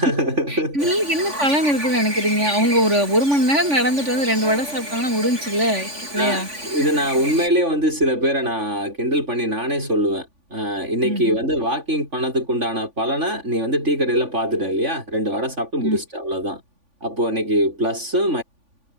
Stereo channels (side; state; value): left; late; 3.5 ms